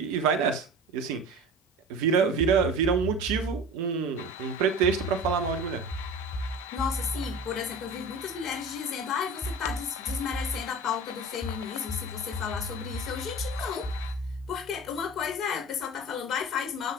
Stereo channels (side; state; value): both; normal; correlation 0.36